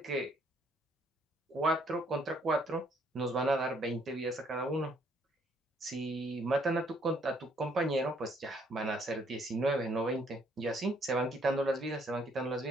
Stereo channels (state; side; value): normal; both; correlation 0.66